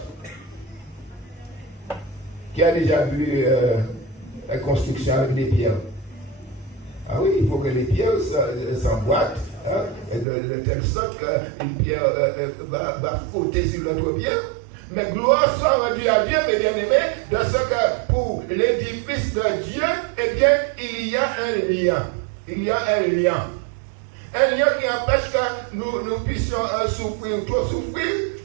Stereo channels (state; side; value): drops out; left; at 10.2 s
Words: Qui a déjà vu la construction avec des pierres? Ah oui, il faut que les pierres s'emboîtent hein, de telle sorte qu'une pierre va frotter sur l'autre pierre. Mais gloire soit rendue à Dieu, mes bien-aimés, dans ce que pour l'édifice de Dieu, eh bien, il y a un lien. Il y a un lien. Un lien qui empêche que nous puissions souffrir ou trop souffrir.